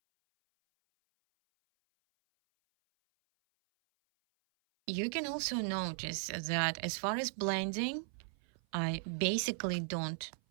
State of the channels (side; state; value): left; silent; 53 dB below the other